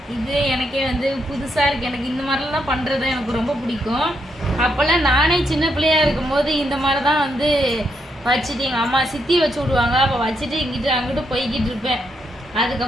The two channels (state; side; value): normal; both; correlation 0.79